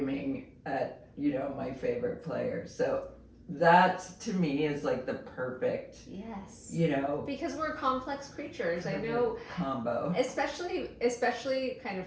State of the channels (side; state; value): both; identical; correlation 1.00